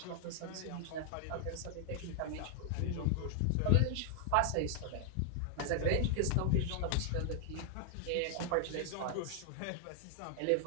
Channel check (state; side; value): different; both; correlation 0.00